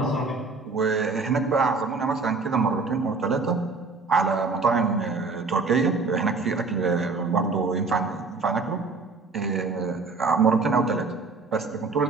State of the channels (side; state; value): left; quieter; 4.1 dB